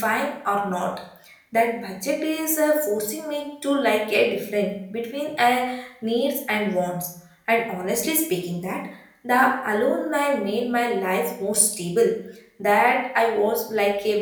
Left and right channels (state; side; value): identical; both; correlation 1.00